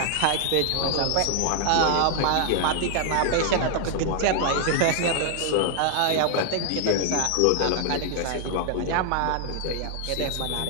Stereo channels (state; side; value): different; both; correlation 0.00